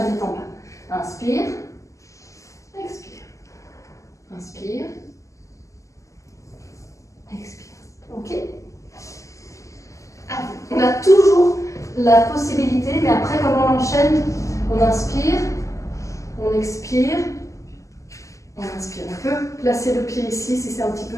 tête en bas. Inspire, expire. Inspire, expire. Ok? On a toujours la possibilité, mais après, quand on enchaîne, on inspire, on expire, on inspire. On peut placer le pied ici si c'est un petit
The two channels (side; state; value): right; late; 0.16 ms